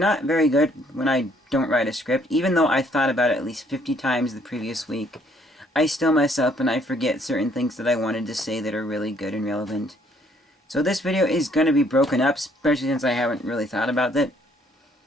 very good when I don't write a script. Even though I thought about it at least 50 times the previous week, I still mess up and I forget certain things that I wanted to say that are really good and relevant. So this video is going to be broken up, especially since I haven't really thought about it.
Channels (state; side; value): normal; both; correlation 0.65